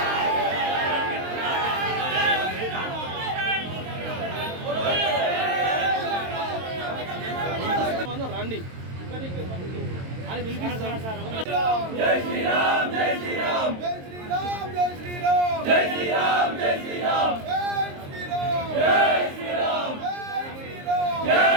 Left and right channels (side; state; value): left; late; 22 ms